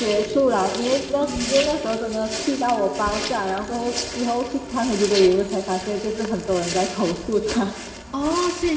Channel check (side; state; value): both; identical; correlation 1.00